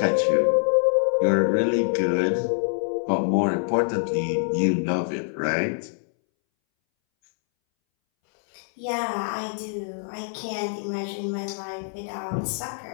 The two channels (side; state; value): right; silent; 62 dB below the other